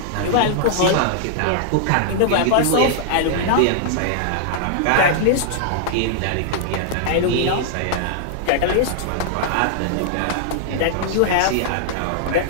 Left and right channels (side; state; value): both; different; correlation -0.01